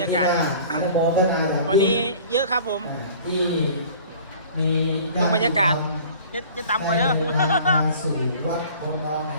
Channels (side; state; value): both; inverted; correlation -0.46